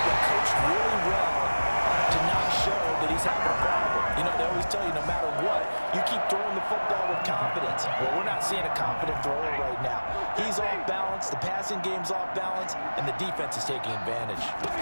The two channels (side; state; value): both; inverted; correlation -1.00